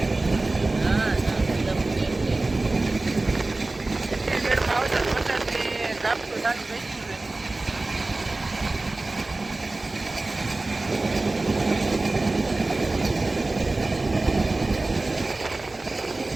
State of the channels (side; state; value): left; quieter; 3.1 dB